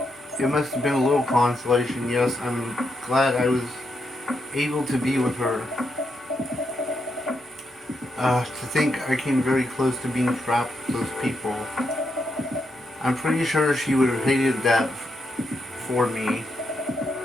It must have been a little consolation. Yes, I'm glad I was able to be with her. To think I came very close to being trapped with those people. I'm pretty sure she would have hated that for me.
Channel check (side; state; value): both; normal; correlation 0.81